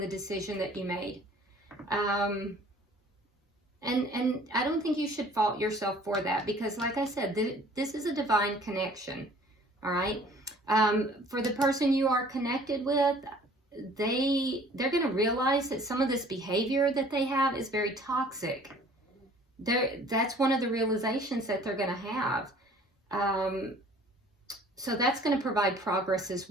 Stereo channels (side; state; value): both; normal; correlation 0.52